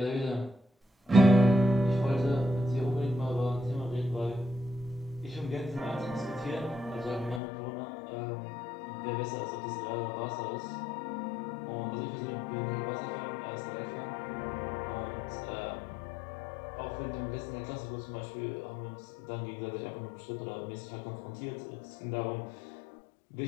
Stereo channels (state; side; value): drops out; right; at 7.4 s